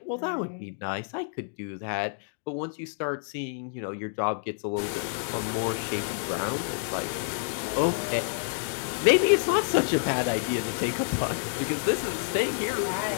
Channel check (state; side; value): silent; right; digital silence